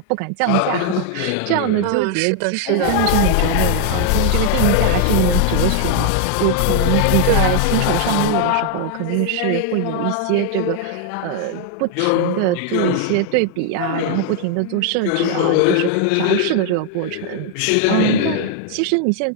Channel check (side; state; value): both; different; correlation 0.00